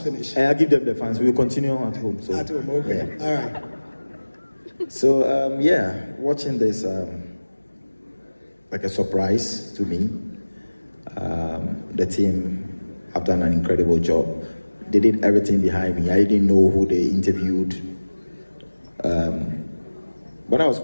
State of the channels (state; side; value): inverted; both; correlation -1.00